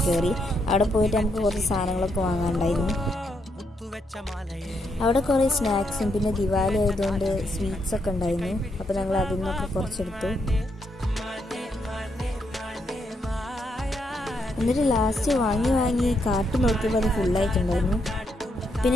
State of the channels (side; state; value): both; normal; correlation 0.78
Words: കയറി. അവിടെ പോയിട്ട് നമുക്ക് കുറച്ച് സാധനങ്ങളൊക്കെ വാങ്ങാനുണ്ടായിരുന്നു. അവിടെ കുറേ സ്നാക്സും പിന്നെ ദിവാലി ആയതുകൊണ്ട് സ്വീറ്റ്സൊക്കെ ഉണ്ടായിരുന്നു. അപ്പോൾ ഞങ്ങൾ അതിൽ നിന്നൊക്കെ കുറച്ചെടുത്തു. എന്നിട്ട് ലാസ്റ്റ് വാങ്ങി കാർട്ട് നോക്കിയപ്പോൾ അത് ഫുള്ളായിട്ടുണ്ടായിരുന്നു.